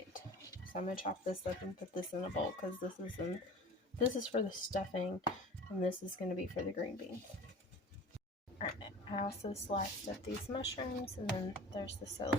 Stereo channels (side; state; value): both; normal; correlation 0.40